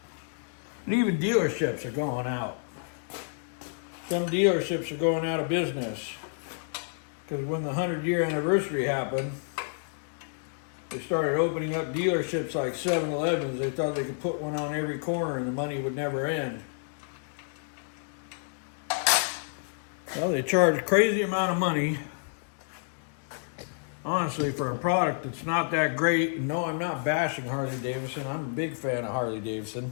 And even dealerships are going out. Some dealerships are going out of business. Because when the 100-year anniversary happened, they started opening up dealerships like 7-Elevens. They thought they could put one on every corner and the money would never end. Well, they charge a crazy amount of money, honestly, for a product that's not that great. No, I'm not bashing Harley Davidson. I'm a big fan of Harley Davidson.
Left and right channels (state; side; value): silent; right; digital silence